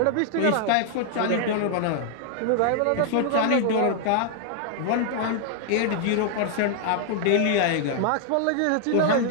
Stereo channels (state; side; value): different; both; correlation 0.00